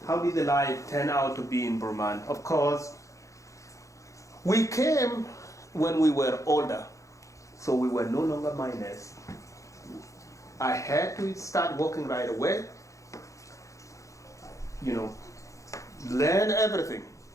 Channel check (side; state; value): right; late; 0.15 ms